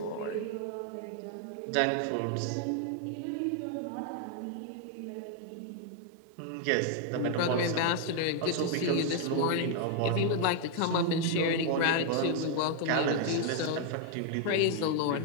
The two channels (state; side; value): different; both; correlation 0.00